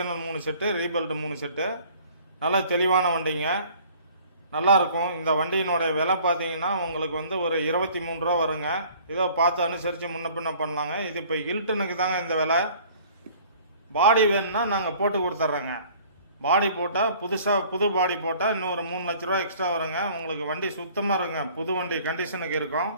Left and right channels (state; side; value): inverted; both; correlation -0.52